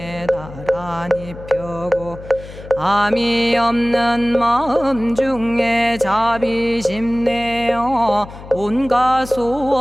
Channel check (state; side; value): noise; left; hum, 15 dB below the sound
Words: 나란히 펴고 암이 없는 마음 중에 자비심 내어 온갖